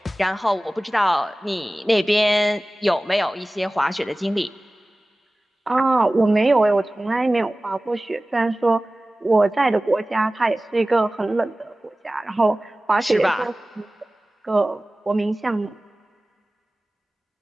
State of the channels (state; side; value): normal; both; correlation 0.97